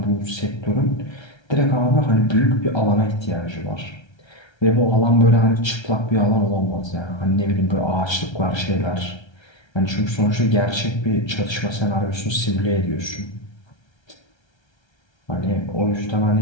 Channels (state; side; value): late; right; 1.3 ms